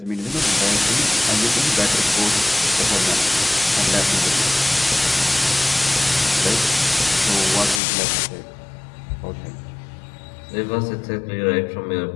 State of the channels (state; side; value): drops out; right; at 7.8 s